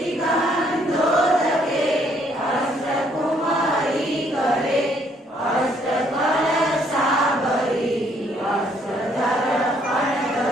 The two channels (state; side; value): normal; both; correlation 0.67